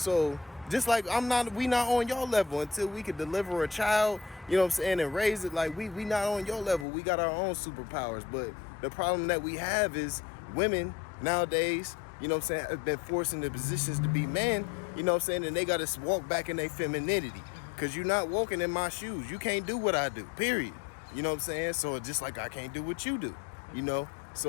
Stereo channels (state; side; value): drops out; right; at 6.9 s